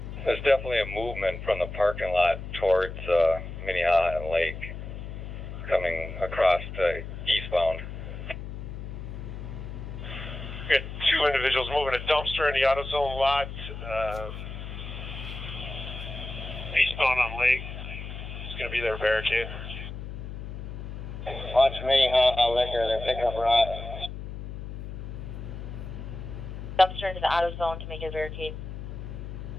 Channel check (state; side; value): noise; left; hum, 8 dB below the sound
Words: There's definitely a movement from the parking lot towards Minneapolis and Lake, coming across to eastbound. We got two individuals moving a dumpster in the AutoZone lot, eastbound on Lake. It's going to be their barricade. Watch Minneapolis liquor, they're picking up rocks. Dumpster into the AutoZone to make a barricade.